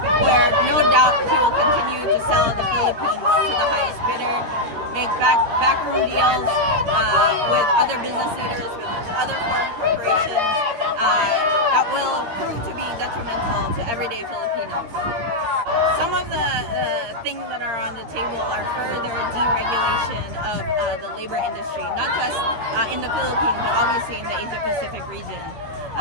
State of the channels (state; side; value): late; left; 13 ms